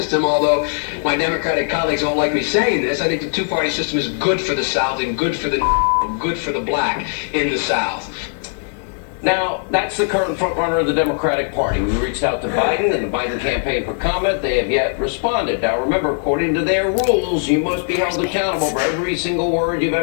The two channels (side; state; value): right; silent; digital silence